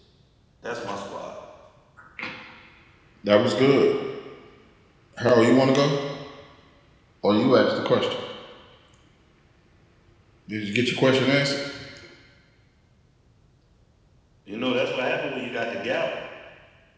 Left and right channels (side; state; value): both; identical; correlation 1.00